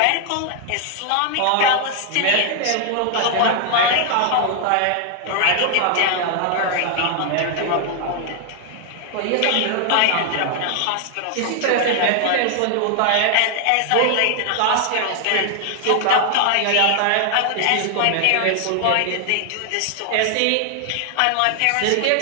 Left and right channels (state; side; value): different; both; correlation 0.00